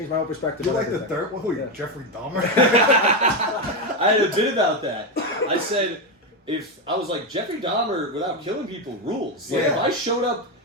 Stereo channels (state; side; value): normal; both; correlation 0.09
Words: my whole perspective. You on like the everything. third one? Who, Yeah. Jeffrey Dahmer? I had a bit about that. I said, if I was like Jeffrey Dahmer without killing people rules. Like Yeah. if I showed up